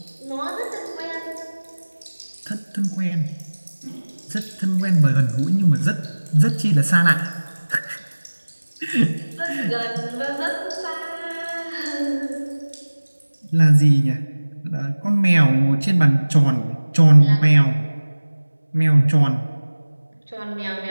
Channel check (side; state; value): both; inverted; correlation -1.00